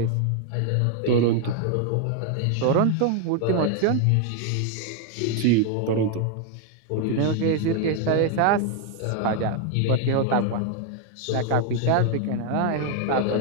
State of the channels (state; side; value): different; both; correlation 0.01